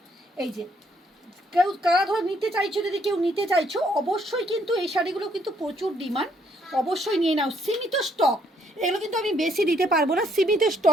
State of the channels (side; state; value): both; normal; correlation 0.69